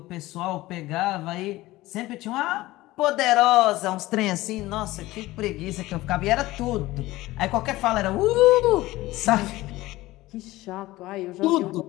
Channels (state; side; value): quieter; right; 18.0 dB